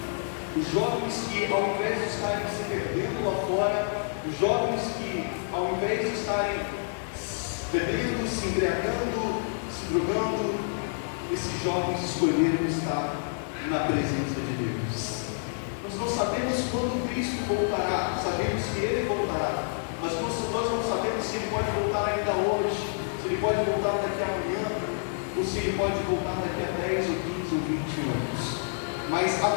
os jovens que ao invés de estarem se perdendo lá fora, os jovens que ao invés de estarem bebendo, se embriagando, se drogando, esses jovens escolheram estar na presença de Deus. Nós não sabemos quando Cristo voltará, sabemos que Ele voltará, mas nós não sabemos se Ele pode voltar ainda hoje, se Ele pode voltar daqui a amanhã, ou se Ele pode voltar daqui a 10 ou 15 ou 20 anos. Mas a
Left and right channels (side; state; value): right; silent; 59 dB below the other